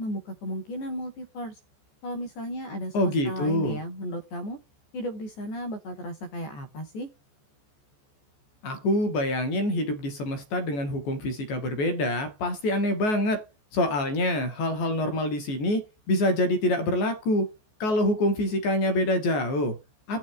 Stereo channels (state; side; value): late; right; 14 ms